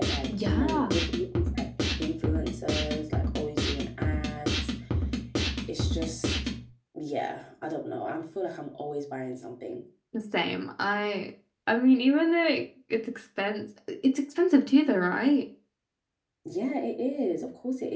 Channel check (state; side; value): identical; both; correlation 1.00